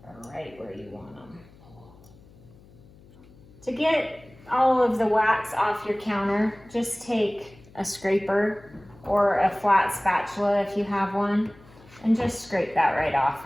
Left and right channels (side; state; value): left; noise; hum, 24 dB below the sound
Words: are right where you want them. To get all of the wax off your counter, just take a scraper or a flat spatula if you have one, and just scrape that right off